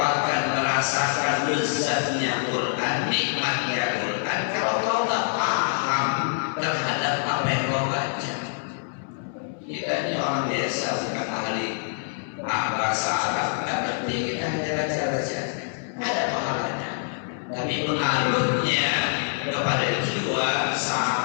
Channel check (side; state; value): right; silent; 61 dB below the other